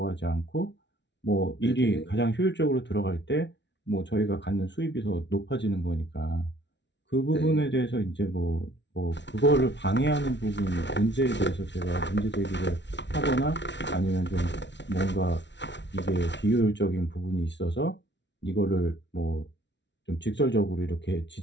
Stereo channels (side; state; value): right; late; 0.51 ms